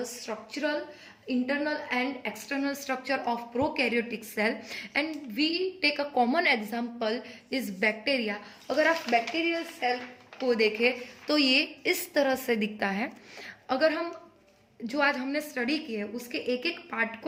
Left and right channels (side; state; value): both; identical; correlation 1.00